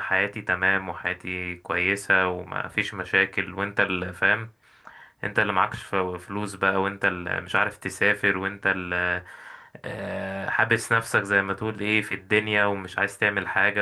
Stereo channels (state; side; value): identical; both; correlation 1.00